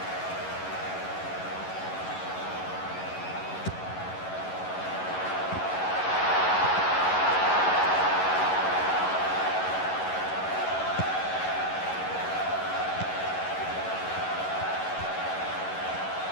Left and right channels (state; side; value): late; right; 11 ms